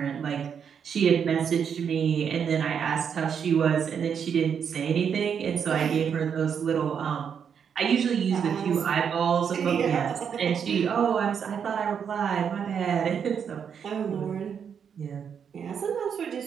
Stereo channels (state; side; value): quieter; left; 7.4 dB